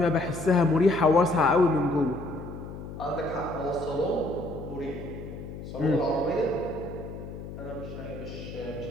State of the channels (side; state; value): left; noise; hum, 11 dB below the sound